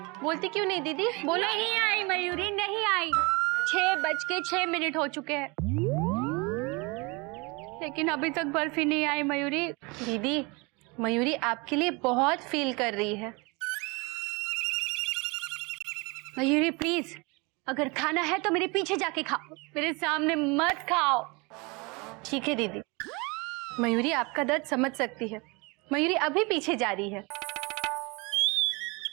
बोलती क्यों नहीं दीदी? बोलो। नहीं आई मयूरी, नहीं आई। 6:06 हो चुके हैं, लेकिन अभी तक बर्फी नहीं आई मयूरी। दीदी, मयूरी आपके लिए बहुत फील कर रही है। मयूरी प्लीज, अगर खाना है तो मेरे पीछे जाके खाओ, मेरे सामने मत खाओ। ठीक है दीदी, मयूरी आपका दर्द समझ सकती है। मयूरी अभी पीछे जा रही है।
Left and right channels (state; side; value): quieter; left; 27.8 dB